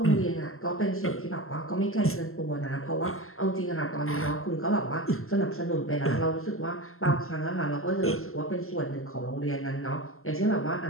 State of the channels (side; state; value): right; late; 0.62 ms